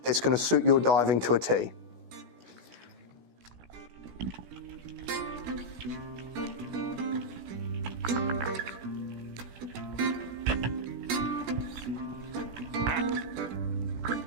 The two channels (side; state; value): left; late; 16 ms